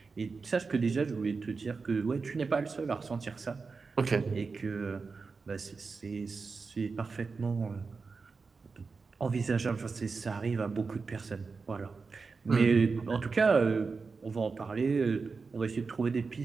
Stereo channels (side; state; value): left; quieter; 4.6 dB